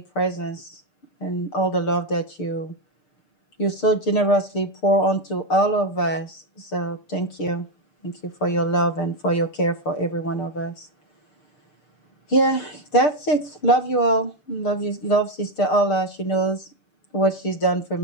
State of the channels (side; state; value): right; late; 6.6 ms